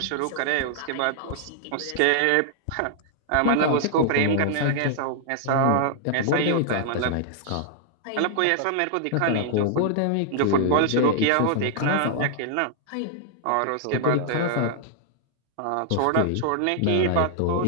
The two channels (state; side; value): different; both; correlation -0.01